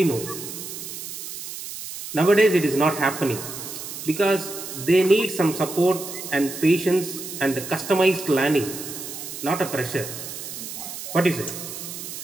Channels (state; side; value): noise; right; hiss, 9 dB below the sound